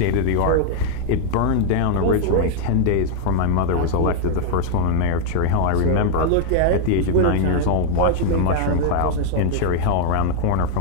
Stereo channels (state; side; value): different; both; correlation 0.00